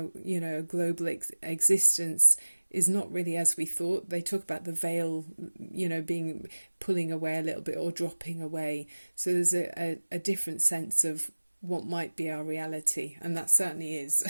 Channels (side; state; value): both; inverted; correlation -1.00